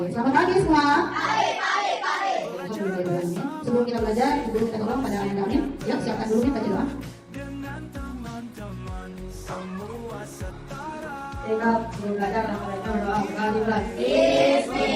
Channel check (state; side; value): identical; both; correlation 1.00